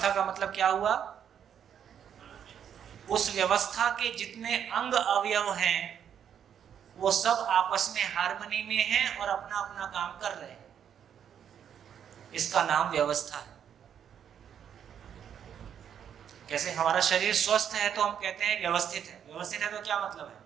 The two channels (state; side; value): quieter; left; 8.7 dB